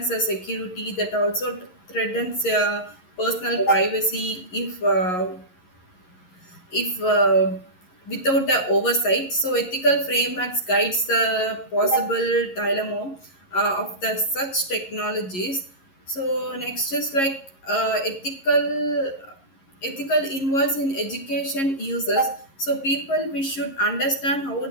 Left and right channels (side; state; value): right; late; 11 ms